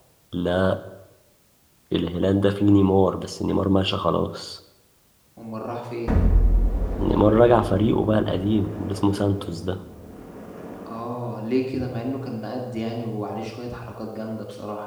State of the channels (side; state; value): both; identical; correlation 1.00